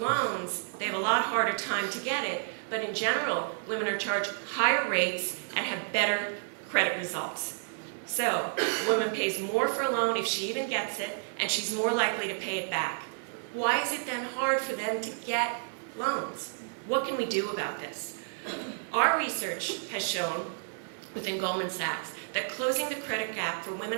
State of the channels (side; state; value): left; silent; digital silence